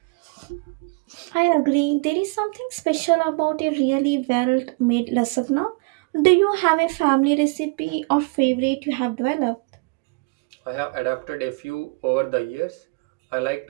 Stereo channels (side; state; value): left; quieter; 30.4 dB